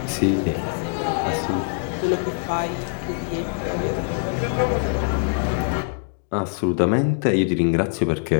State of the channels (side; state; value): right; silent; digital silence